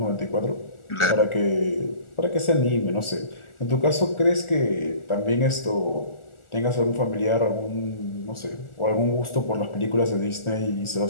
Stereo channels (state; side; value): late; right; 1.4 ms